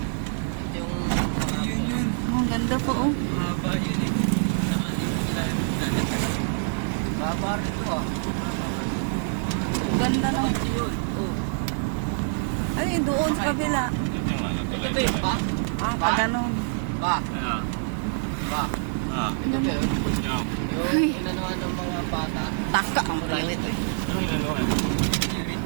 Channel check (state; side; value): silent; left; digital silence